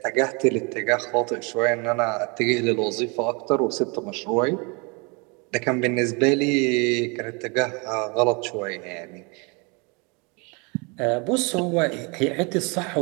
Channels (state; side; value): quieter; left; 31.0 dB